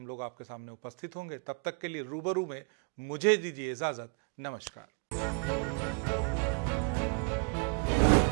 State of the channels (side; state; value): left; quieter; 34.9 dB